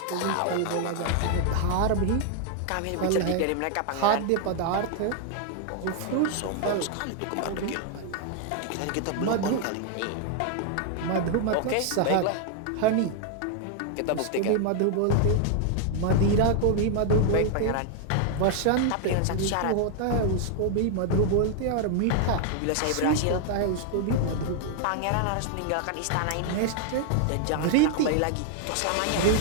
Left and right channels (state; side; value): different; both; correlation 0.00